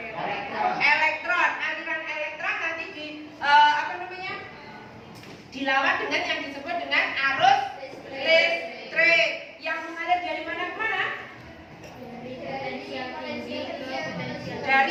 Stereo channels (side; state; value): both; identical; correlation 1.00